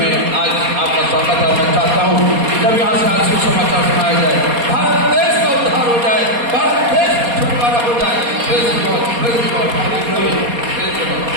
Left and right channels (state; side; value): late; left; 4.2 ms